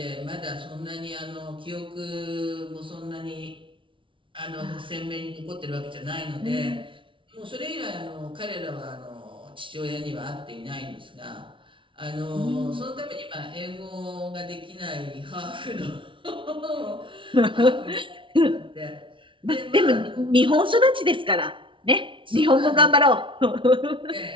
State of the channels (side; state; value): left; late; 0.25 ms